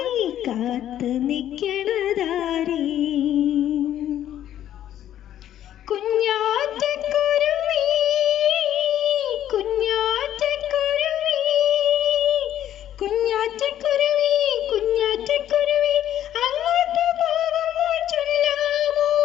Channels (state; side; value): quieter; right; 11.5 dB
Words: കാത്ത് നിൽക്കണതാരേ. കുഞ്ഞാറ്റക്കുരുവി കുഞ്ഞാറ്റക്കുരുവി കുഞ്ഞാറ്റക്കുരുവി കുഞ്ഞാറ്റക്കുരുവി, അങ്ങോട്ട് പോകുമ്പോൾ ചൊല്ലാമോ